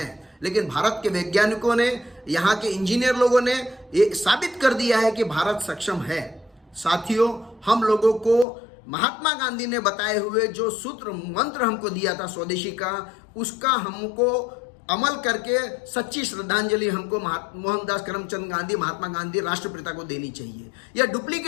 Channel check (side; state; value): right; drops out; at 8.5 s